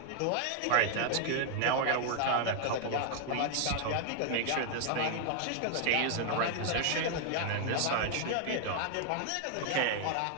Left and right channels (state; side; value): different; both; correlation 0.00